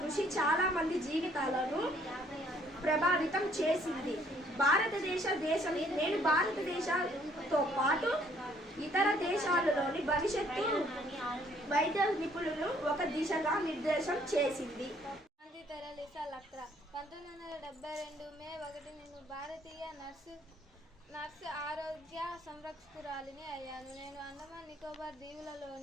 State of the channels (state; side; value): normal; both; correlation 0.63